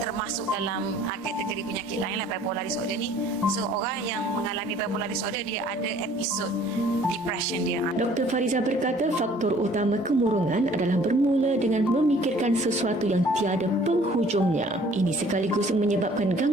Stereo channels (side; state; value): both; normal; correlation 0.55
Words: termasuk dalam kategori penyakit lain lah, bipolar disorder ni. So orang yang mengalami bipolar disorder dia ada episod depression dia. Dr. Fariza berkata faktor utama kemurungan adalah bermula dengan memikirkan sesuatu yang tiada penghujungnya. Ini sekaligus menyebabkan